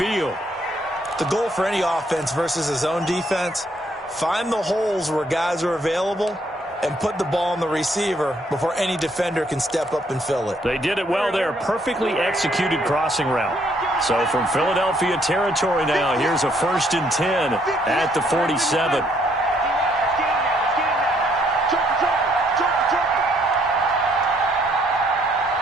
The goal for any offense versus his own defense, find the holes where guys are available and put the ball on the receiver before any defender can step up and fill it. They did it well there. Perfectly executed crossing route. So from Philadelphia territory now, here's a 1st and 10 at the 47.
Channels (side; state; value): both; normal; correlation 0.69